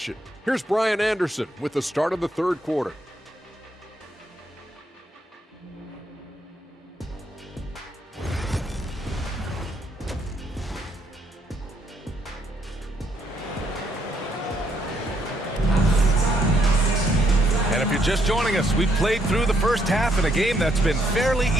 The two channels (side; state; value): both; normal; correlation 0.73